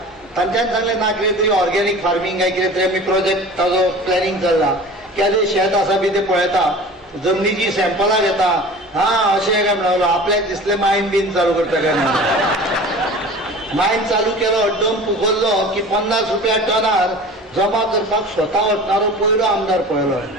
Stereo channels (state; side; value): normal; both; correlation 0.40